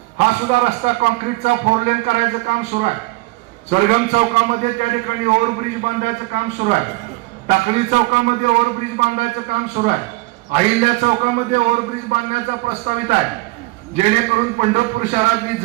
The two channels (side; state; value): left; quieter; 22.4 dB